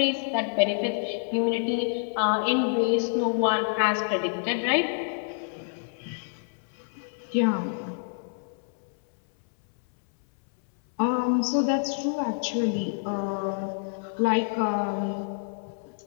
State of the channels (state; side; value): silent; right; 60 dB below the other